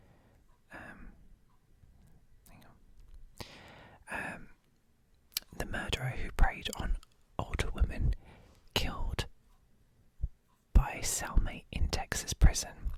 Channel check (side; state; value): both; identical; correlation 1.00